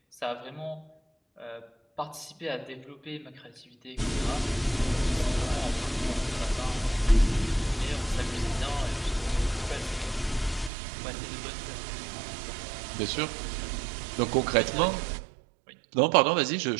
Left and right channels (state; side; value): drops out; left; at 10.7 s